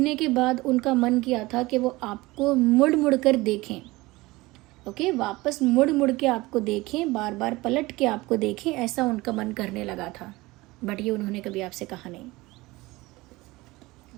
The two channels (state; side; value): quieter; left; 20.8 dB